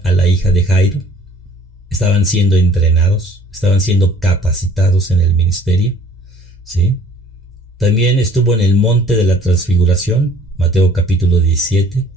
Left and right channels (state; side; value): normal; both; correlation 0.54